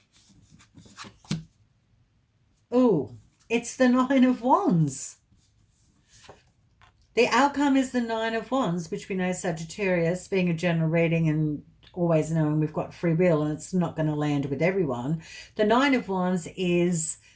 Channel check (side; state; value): both; identical; correlation 1.00